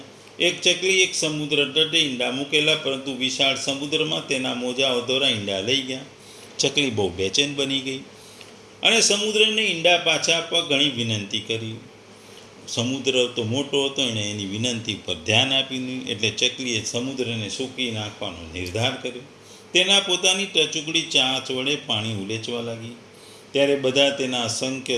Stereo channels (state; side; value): identical; both; correlation 1.00